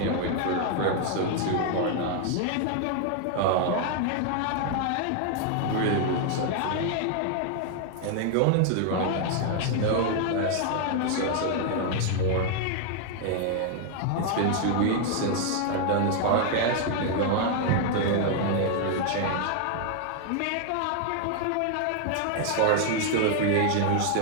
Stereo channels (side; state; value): both; different; correlation 0.00